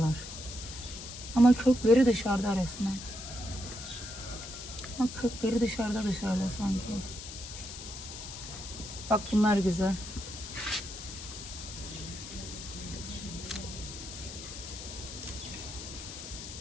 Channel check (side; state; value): left; noise; hiss, 10 dB below the sound